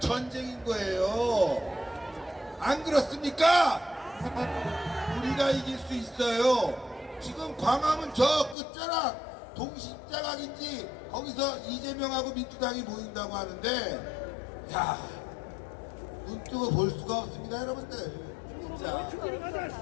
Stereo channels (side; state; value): right; drops out; at 8.6 s